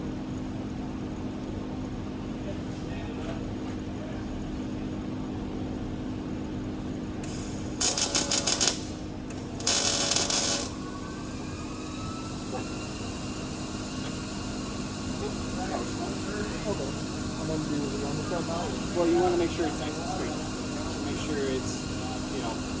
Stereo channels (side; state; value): both; identical; correlation 1.00